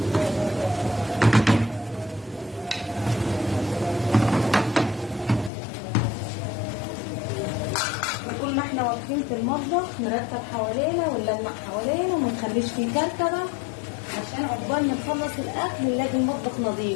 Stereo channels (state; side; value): drops out; right; at 5.5 s